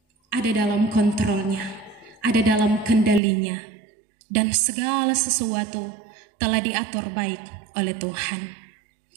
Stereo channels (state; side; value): drops out; left; at 3.2 s